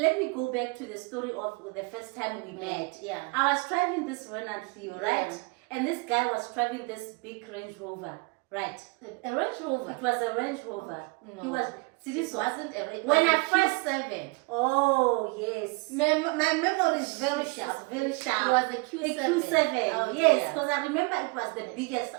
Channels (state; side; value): quieter; left; 29.3 dB